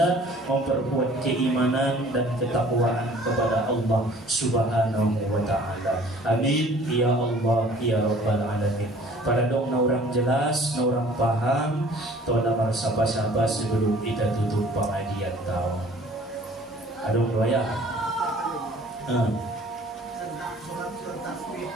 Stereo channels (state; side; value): normal; both; correlation 0.51